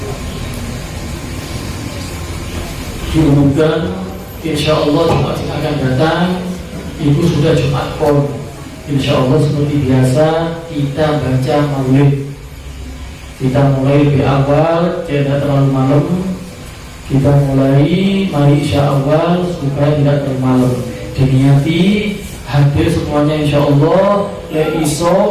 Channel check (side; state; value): both; identical; correlation 1.00